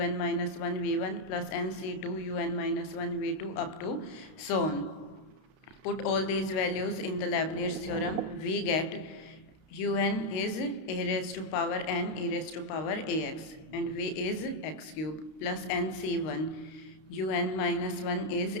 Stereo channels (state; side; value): late; right; 32 ms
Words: un minus 1 v1 plus nc2 un minus 1 v2 up to so on. Put all these values in the Leibniz theorem. We get un is a raised to power n e raised to power ax and v is x cube plus nc1 un minus 1 is